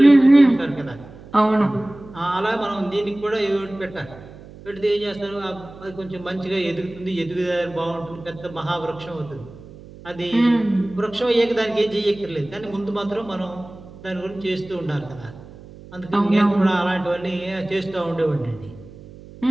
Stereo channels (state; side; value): noise; right; hum, 18 dB below the sound